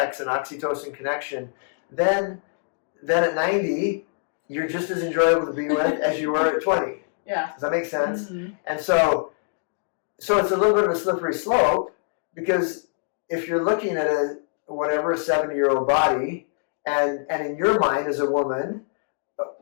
and oxytocin connection. Then then at 90, you're just as enjoyable to be with as you were at 20. Yeah. Does that make sense? Mm-hmm. And so it's a little bit of a slippery slope, because if you're looking at a 70-year-old body, and in your mind as a woman,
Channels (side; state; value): right; silent; digital silence